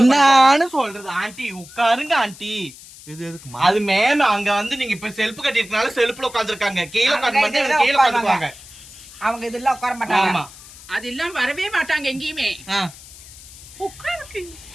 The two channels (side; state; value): left; noise; hiss, 18 dB below the sound